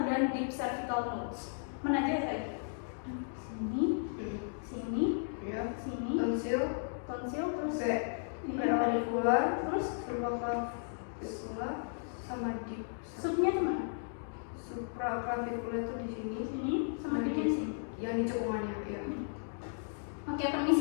dan deep cervical nodes. Mana aja ya tadi? Sini, sini, Ya. sini, Tonsil, terus preauricular, terus supraclavicular, sama deep. subnya kemana? Supraclavicular itu di sini. Sini, sama di sini. Yang di cekungannya, ya. Oke,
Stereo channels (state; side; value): silent; right; digital silence